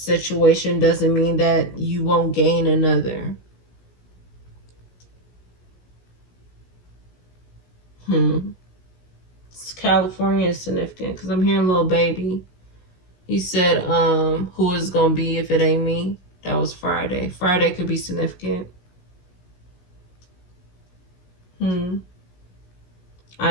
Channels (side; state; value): right; late; 16 ms